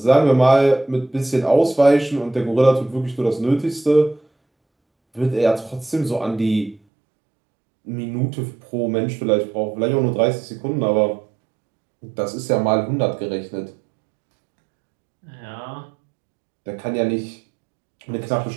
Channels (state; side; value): drops out; left; at 6.8 s